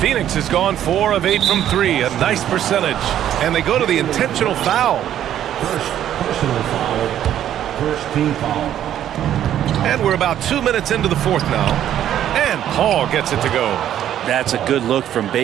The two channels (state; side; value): quieter; left; 11.0 dB